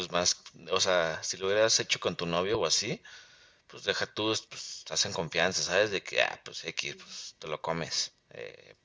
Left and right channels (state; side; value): identical; both; correlation 1.00